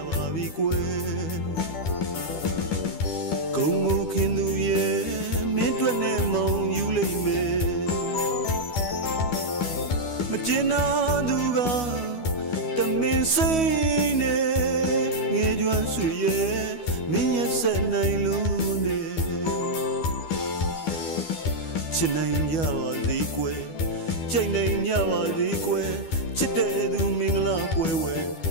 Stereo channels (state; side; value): late; right; 12 ms